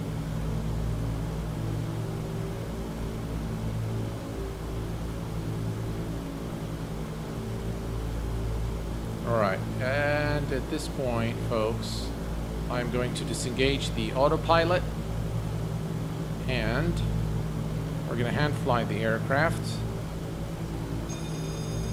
All right, and at this point, folks, I'm going to disengage the autopilot, and we're going to hand fly the aircraft.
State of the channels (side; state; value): both; identical; correlation 1.00